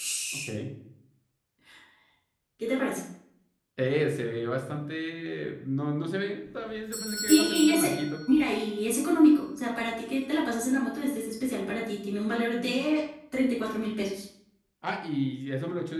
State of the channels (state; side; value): identical; both; correlation 1.00